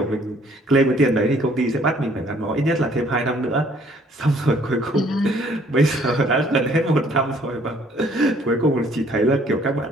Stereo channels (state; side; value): normal; both; correlation 0.61